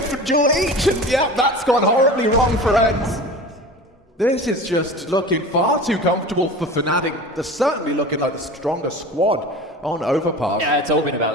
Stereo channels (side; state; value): both; normal; correlation 0.35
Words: duel each, and yeah, that's gone horribly wrong for ENCE. This is just looking far too comfortable for fnatic. They're certainly looking like the stronger squad on Overpass. Yeah, it's all been